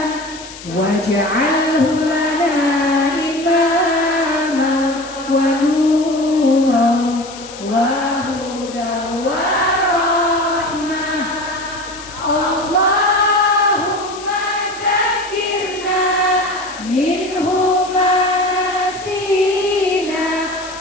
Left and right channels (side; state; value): left; noise; hiss, 15 dB below the sound